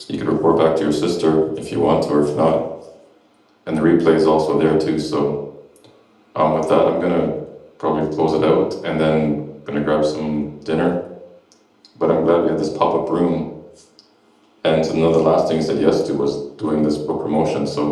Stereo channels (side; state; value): both; identical; correlation 1.00